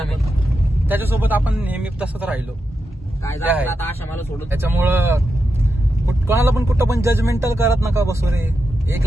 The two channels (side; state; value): both; normal; correlation 0.88